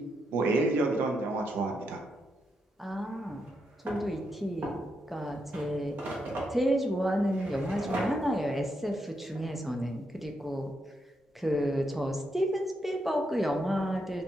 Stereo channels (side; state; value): both; normal; correlation 0.82